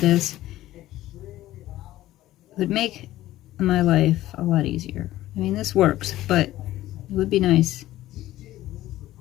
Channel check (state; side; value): quieter; right; 15.1 dB